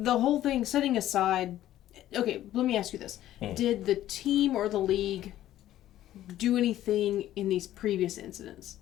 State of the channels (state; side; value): quieter; right; 13.2 dB